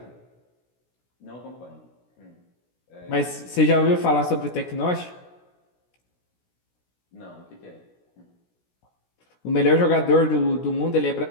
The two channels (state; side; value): late; right; 16 ms